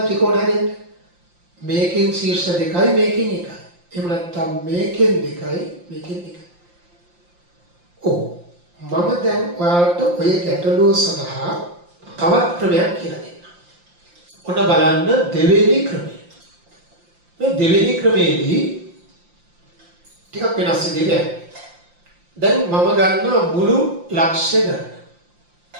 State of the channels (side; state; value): left; late; 5.7 ms